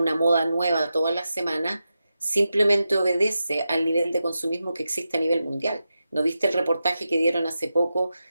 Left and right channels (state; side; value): inverted; both; correlation -0.90